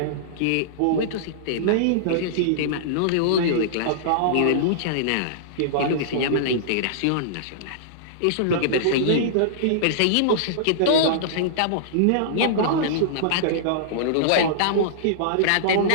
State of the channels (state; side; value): different; both; correlation -0.02